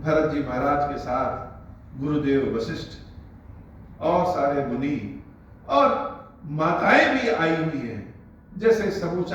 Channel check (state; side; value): identical; both; correlation 1.00